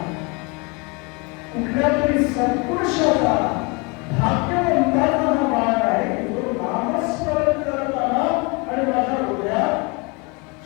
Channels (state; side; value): quieter; right; 29.8 dB